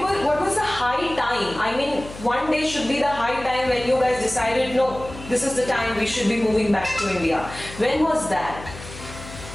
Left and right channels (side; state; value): left; noise; hum, 14 dB below the sound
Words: what was the high time? I mean, one day should be the high time when you guys decided, no, this is the time we should be moving back to India. When was that?